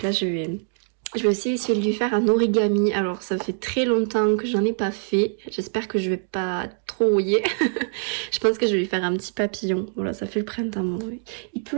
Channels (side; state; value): left; silent; digital silence